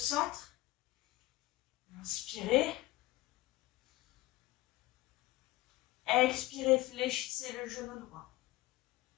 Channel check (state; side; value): quieter; right; 18.5 dB